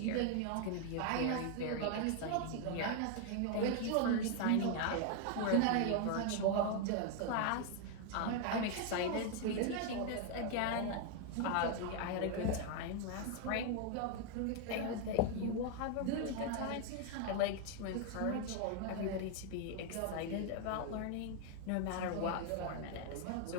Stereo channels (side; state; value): both; different; correlation 0.00